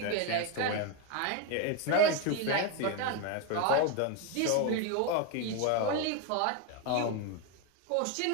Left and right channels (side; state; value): both; different; correlation 0.02